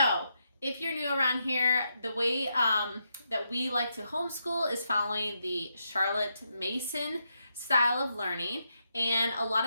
if you're new around here, the way that we like to homeschool is following the Charlotte Mason style of learning. And a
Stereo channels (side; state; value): both; inverted; correlation -0.82